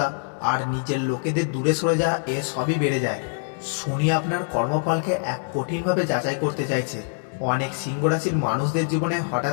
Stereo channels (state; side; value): silent; right; 62 dB below the other